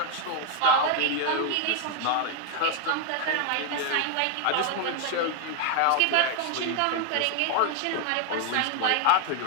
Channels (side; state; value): both; different; correlation 0.00